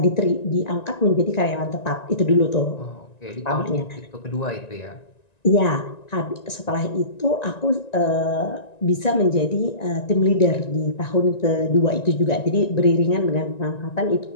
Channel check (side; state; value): right; late; 1.9 ms